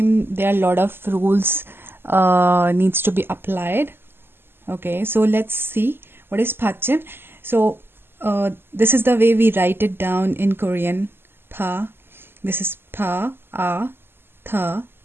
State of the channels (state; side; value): late; left; 0.11 ms